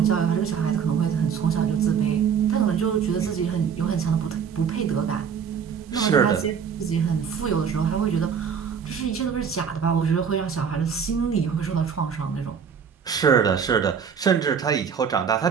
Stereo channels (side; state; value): left; quieter; 7.0 dB